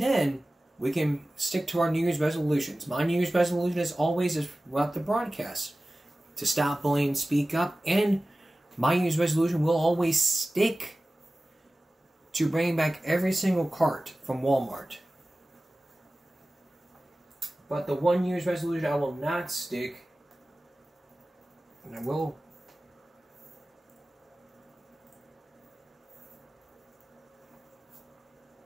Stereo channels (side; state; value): both; normal; correlation 0.96